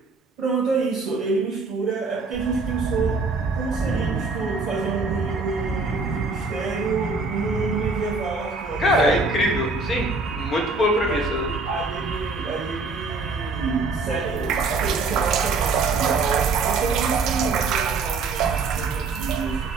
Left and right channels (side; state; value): left; quieter; 3.8 dB